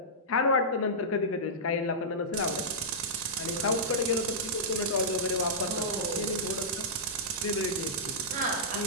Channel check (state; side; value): normal; both; correlation -0.14